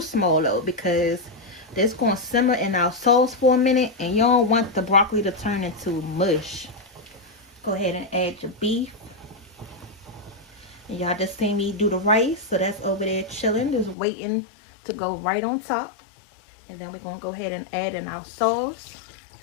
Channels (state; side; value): drops out; right; at 14.0 s